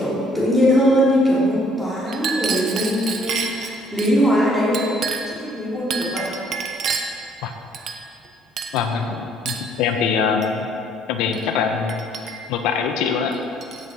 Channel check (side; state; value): both; normal; correlation 0.63